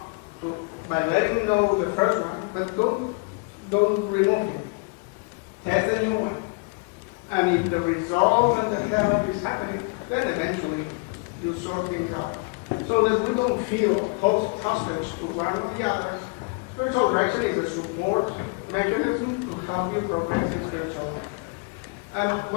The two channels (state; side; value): quieter; right; 31.5 dB